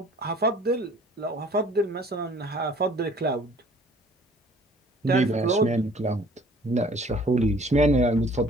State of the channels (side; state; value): both; normal; correlation 0.54